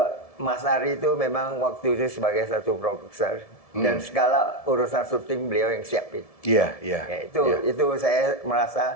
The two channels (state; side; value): late; right; 1.7 ms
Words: Mas Ari itu memang waktu itu sebagai satu produser dan segala urusan syuting beliau yang siapin. Iya, iya. Ya, itu saya